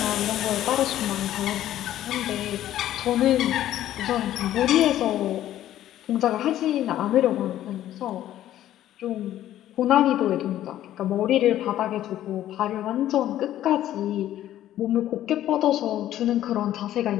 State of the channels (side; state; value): right; quieter; 12.7 dB